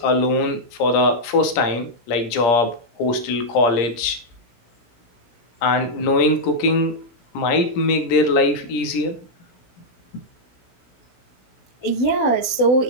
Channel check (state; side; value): late; right; 17 ms